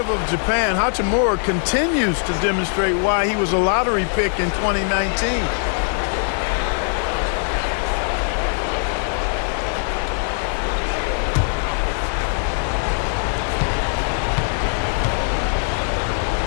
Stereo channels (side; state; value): right; silent; 56 dB below the other